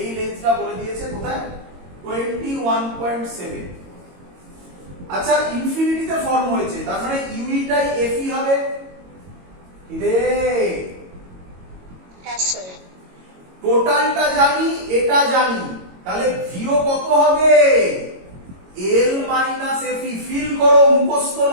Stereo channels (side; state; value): left; late; 22 ms